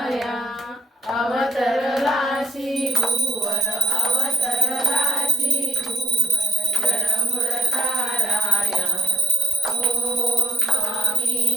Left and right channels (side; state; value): both; normal; correlation 0.80